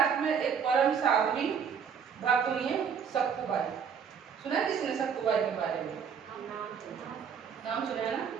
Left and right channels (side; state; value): left; quieter; 7.0 dB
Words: में एक परम साध्वी भक्त हुई है सक्कुबाई। सुना है किसने सक्कुबाई के बारे में? नाम सुना है ना,